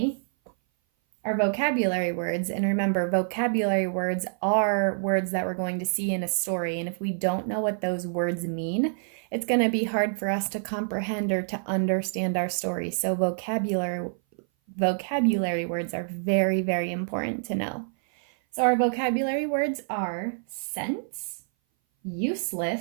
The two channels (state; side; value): silent; left; 58 dB below the other